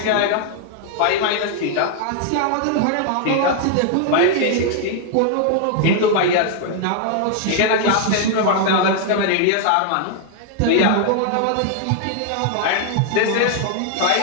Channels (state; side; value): different; both; correlation 0.00